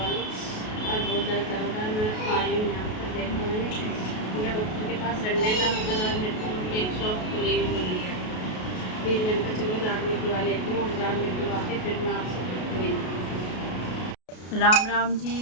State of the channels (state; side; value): late; right; 33 ms